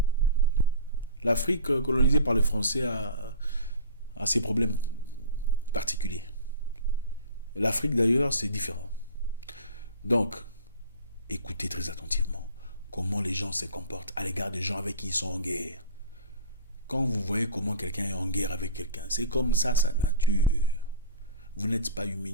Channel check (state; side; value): inverted; both; correlation -0.38